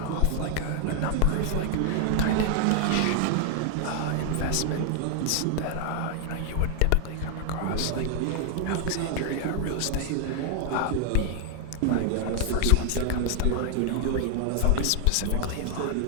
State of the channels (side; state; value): both; different; correlation 0.00